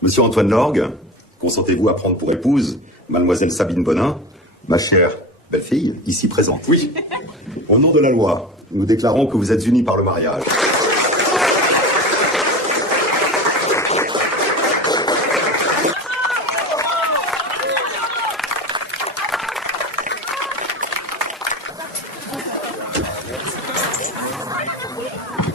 Monsieur Antoine Lorgue, consentez-vous à prendre pour épouse Mademoiselle Sabine Bonin, ma chère belle-fille, ici présente? Oui. Au nom de la loi, nous déclarons que vous êtes unis par le mariage.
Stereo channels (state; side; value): normal; both; correlation 0.29